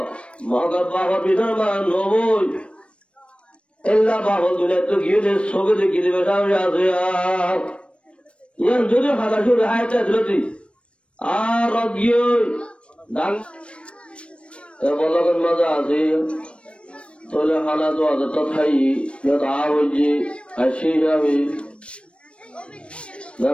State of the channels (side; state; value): right; late; 0.059 ms